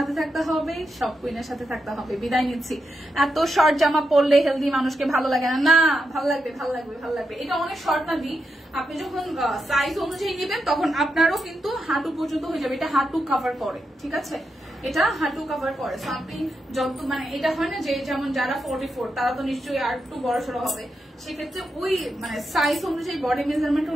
থাকতে হবে, সব কুইনের সাথে থাকতে হবে। বিদায় নিচ্ছি। এত শর্ট জামা পরলে হেলদি মানুষকে ভালো লাগে না। না, ভালো লাগবে, ভালো লাগবে, ভালো লাগবে। এটা অনেক শর্ট না দি, আপনি যখন সাইজ অনুযায়ী নেবেন তখন আপনারও কিন্তু হাঁটু পর্যন্ত হয়ে যাবে। এটা হাঁটু কভার করে, ঠিক আছে, এটা হাঁটু কভার করে। সো আপনি যত মানে এটা হয় না যে যেমন যারা 44 তারা তো নিশ্চয়ই আর একটু বড় সড়ো হবে, সেক্ষেত্রে ওই মানে সাইজ অনুযায়ী, বডি মেজারমেন্ট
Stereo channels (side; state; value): both; normal; correlation 0.85